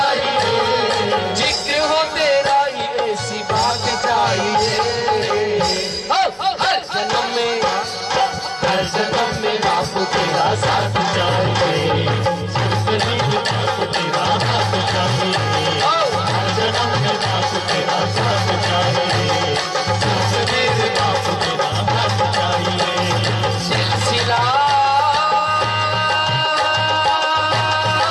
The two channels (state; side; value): identical; both; correlation 1.00